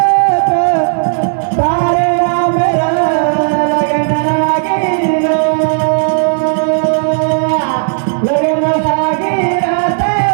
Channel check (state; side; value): silent; left; digital silence